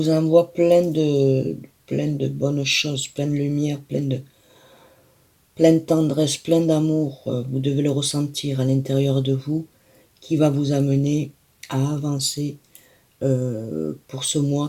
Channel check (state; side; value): identical; both; correlation 1.00